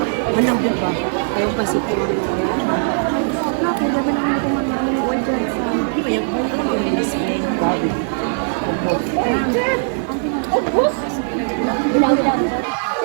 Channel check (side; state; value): left; silent; digital silence